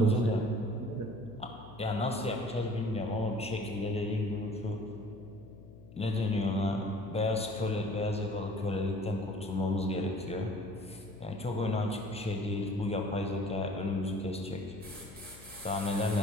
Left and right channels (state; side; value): noise; left; hum, 19 dB below the sound